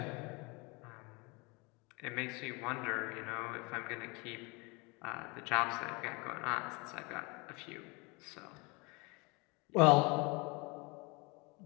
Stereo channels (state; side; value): quieter; right; 27.7 dB